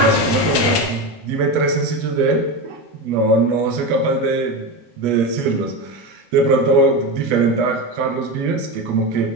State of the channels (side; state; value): both; normal; correlation 0.19